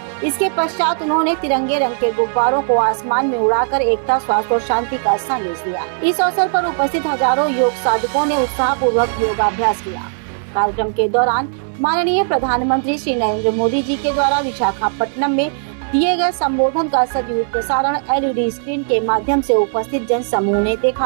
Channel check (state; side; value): silent; left; digital silence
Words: इसके पश्चात उन्होंने तिरंगे रंग के गुब्बारों को आसमान में उड़ाकर एकता, स्वास्थ्य और शांति का संदेश दिया। इस अवसर पर उपस्थित हजारों योग साधकों ने उत्साहपूर्वक योगाभ्यास किया। कार्यक्रम के दौरान माननीय प्रधानमंत्री श्री नरेंद्र मोदी जी के द्वारा विशाखापट्टनम में दिए गए संबोधन का सजीव प्रसारण LED स्क्रीन के माध्यम से उपस्थित जन समूह ने